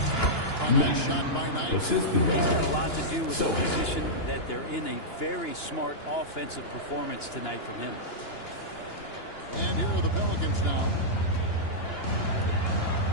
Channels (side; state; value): right; late; 2.9 ms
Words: A nice shot by Knight. He's got a lot to do with the position that they're in. A very smart offensive performance tonight from him. And here are the Pelicans now.